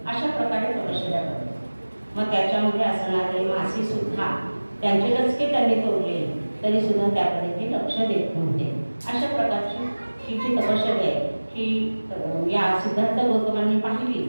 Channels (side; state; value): both; inverted; correlation -1.00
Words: अशा प्रकारे तपश्चर्या करतात. मग त्याच्यामध्ये असणारे मासे सुद्धा त्यांचे डचके त्यांनी तोडले तरी सुद्धा त्याकडे ते लक्ष देत नव्हते. अशा प्रकारची ही जी तपश्चर्या आहे ही या सिद्धार्थ गौतमांनी पाहिली